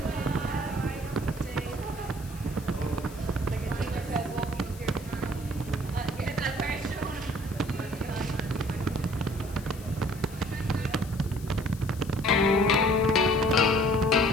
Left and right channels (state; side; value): noise; left; hiss, 19 dB below the sound